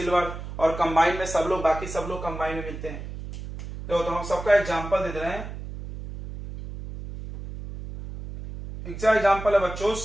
और कंबाइन में सब लोग, बाकी सब लोग कंबाइन में मिलते हैं। तो हम सबका एग्जाम्पल दे रहे हैं। एग्जाम्पल है बच्चों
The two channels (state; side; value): noise; right; hum, 10 dB below the sound